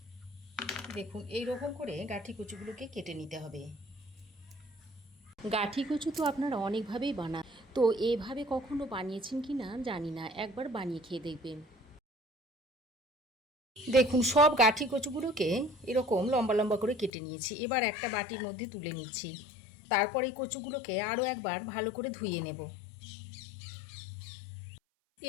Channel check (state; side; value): drops out; right; at 17.1 s